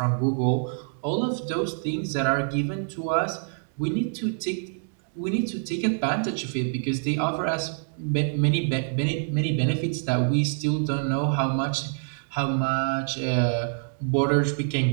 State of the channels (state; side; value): silent; left; digital silence